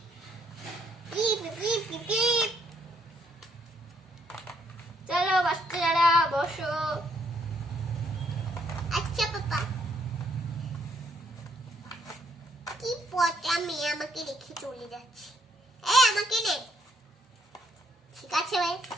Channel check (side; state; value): both; normal; correlation 0.71